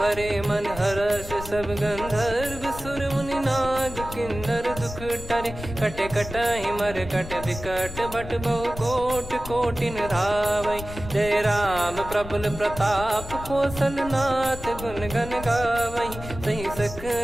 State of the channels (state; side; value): noise; left; rumble, 11 dB below the sound